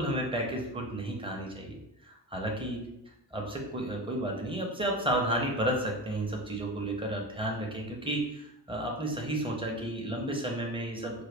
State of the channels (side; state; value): both; normal; correlation 0.27